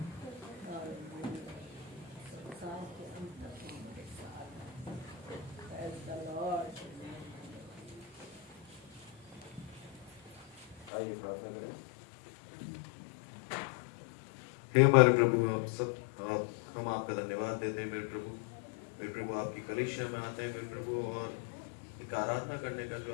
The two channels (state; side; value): drops out; right; at 10.9 s